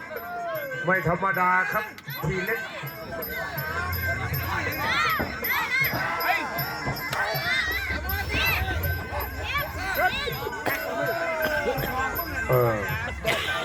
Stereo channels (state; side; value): identical; both; correlation 1.00